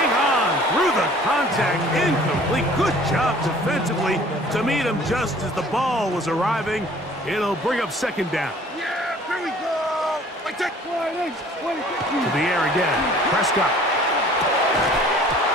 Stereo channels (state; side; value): normal; both; correlation 0.52